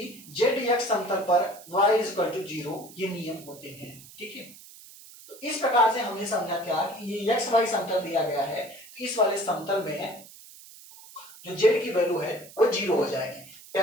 ZX समतल पर y = 0, ये नियम होते हैं। ठीक है, तो इस प्रकार से हमने समझा क्या कि ये XY समतल दिया गया है तो इस वाले समतल में जो Z की वैल्यू है वो 0 हो जाएगी।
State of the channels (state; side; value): noise; right; hiss, 19 dB below the sound